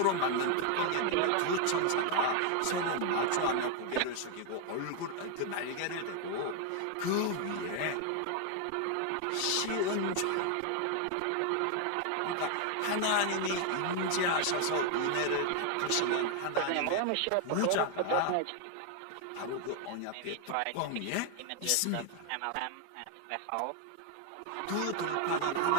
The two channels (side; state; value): both; different; correlation 0.01